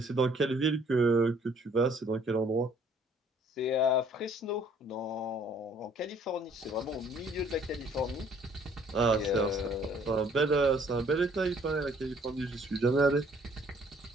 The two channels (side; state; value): both; normal; correlation 0.60